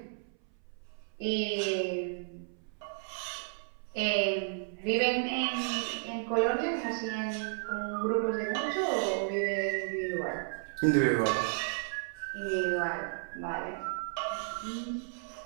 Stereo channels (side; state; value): left; silent; 56 dB below the other